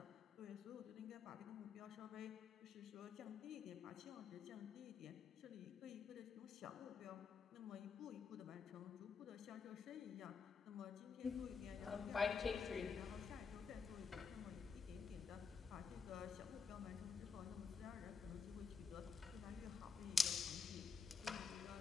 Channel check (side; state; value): right; quieter; 5.6 dB